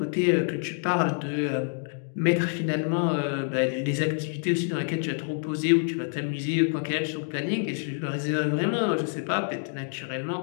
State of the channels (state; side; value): silent; right; 60 dB below the other